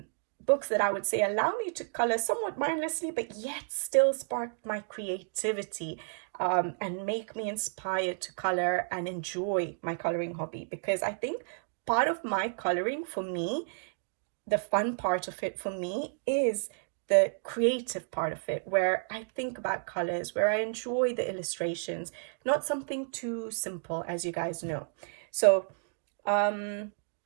books that I would say allow me to color somewhat mindlessly but yet still spark my creativity, and make me inspired to color and enjoy my coloring hobby. Because I think part of my coloring, for me, the fun part of it for me is the creative part of it, where I think about colors, where I enjoy the illustrations, not something too simple, as you guys know. So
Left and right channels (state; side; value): silent; left; digital silence